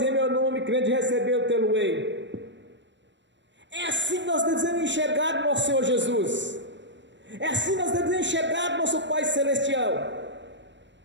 em meu nome, crente recebeu, tê-lo-ei. É assim que nós devemos enxergar o nosso Senhor Jesus. É assim que nós devemos enxergar o nosso Pai Celestial,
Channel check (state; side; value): late; left; 0.53 ms